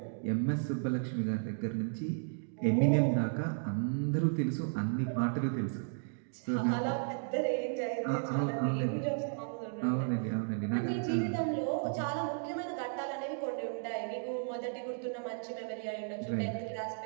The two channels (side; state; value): left; silent; digital silence